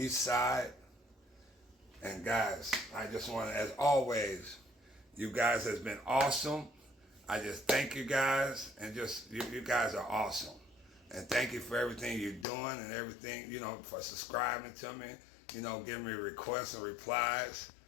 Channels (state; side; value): drops out; right; at 12.5 s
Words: side. And guys, I just want to, as always, you guys has been awesome. I just thank you guys, and just, you guys are awesome. And thank you for everything you're doing and everything, for subscribing to me, giving me requests and replies.